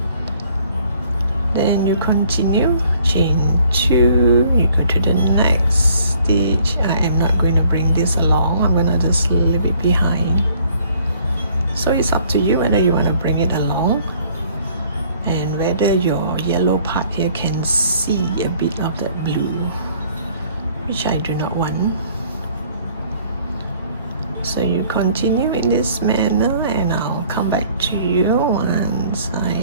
Then you continue, chain 2, you go to the next stitch. I am not going to bring this along, I'm going to just leave it behind. So it's up to you whether you want to bring it along and whether your yellow part here can see a bit of that blue, which I do not want. So you continue in this manner, and I'll come back to you once I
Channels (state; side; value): inverted; both; correlation -0.59